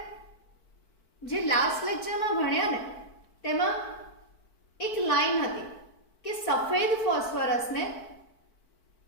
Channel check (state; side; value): late; right; 4.5 ms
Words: જે લાસ્ટ લેક્ચરમાં ભણ્યા ને તેમાં એક લાઈન હતી કે સફેદ ફોસ્ફરસને